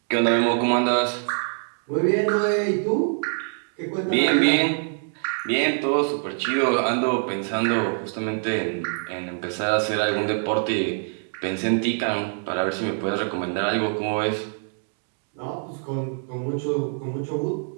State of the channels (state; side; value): silent; left; 59 dB below the other